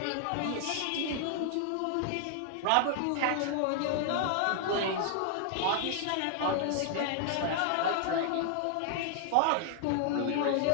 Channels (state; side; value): different; both; correlation 0.00